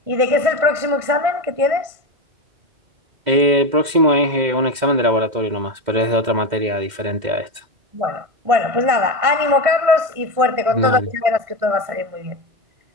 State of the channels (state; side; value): late; left; 2.1 ms